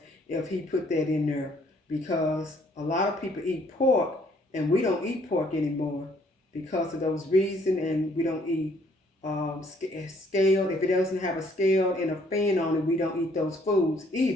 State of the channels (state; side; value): normal; both; correlation 0.64